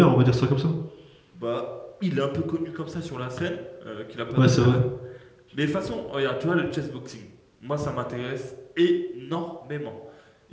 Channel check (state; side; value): identical; both; correlation 1.00